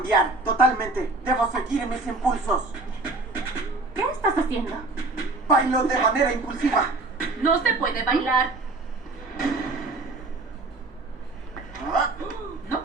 totalmente. Debo seguir mis impulsos. ¿Qué estás haciendo? Bailo de manera impulsiva. No se puede bailar. Ah, No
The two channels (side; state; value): left; quieter; 3.2 dB